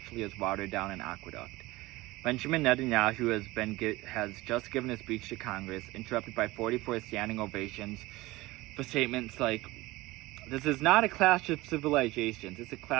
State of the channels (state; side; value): quieter; left; 20.0 dB